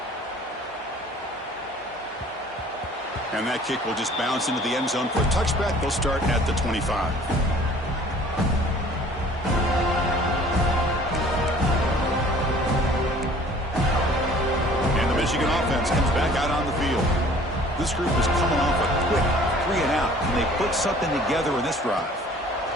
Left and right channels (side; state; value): both; normal; correlation 0.52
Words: And that kick will just bounce into the end zone for a touchback. They'll start at the 25. And the Michigan offense comes back out on the field. This group is coming off a quick 3-and-out, and they put something together in this drive.